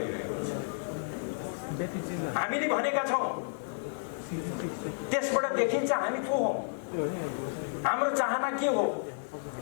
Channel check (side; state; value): right; silent; 57 dB below the other